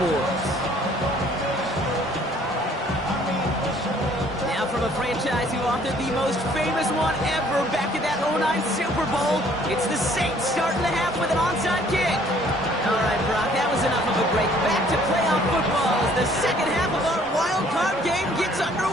Now from a franchise who authored the most famous one ever back in that 09 Super Bowl, it's the Saints starting the half with an onside kick. All right, Brock, that was enough of a break. Back to playoff football as the second half of our wild card game gets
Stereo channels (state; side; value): normal; both; correlation 0.59